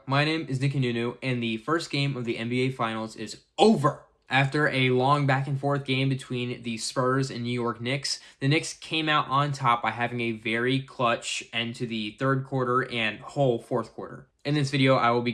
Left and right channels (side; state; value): both; identical; correlation 1.00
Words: My name is Nicky Nunu, and the first game of the NBA Finals is over. After a long back and forth game between the Spurs and New York Knicks, the Knicks came out on top by having a very clutch end to the third quarter and whole fourth quarter. In this video, I will be